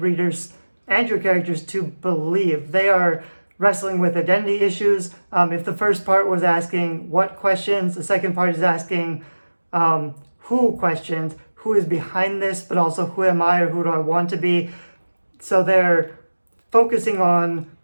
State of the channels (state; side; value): inverted; both; correlation -1.00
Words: and your characters to believe. They are wrestling with identity issues. If the first part was asking what questions, the second part is asking who questions, who is behind this, but also who am I or who do I want to be. So they're focusing on